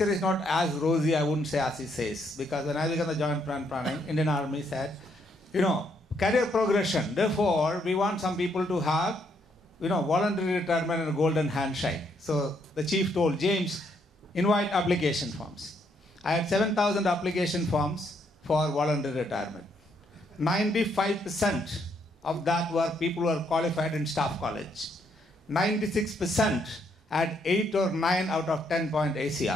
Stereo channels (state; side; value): normal; both; correlation 0.73